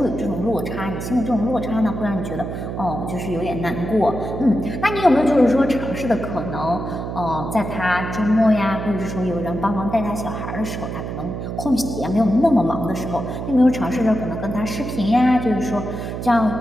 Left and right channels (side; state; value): right; noise; hum, 5 dB below the sound